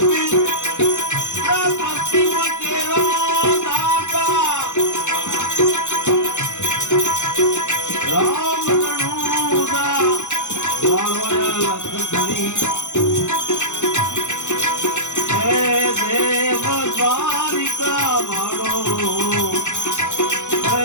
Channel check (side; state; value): right; late; 0.84 ms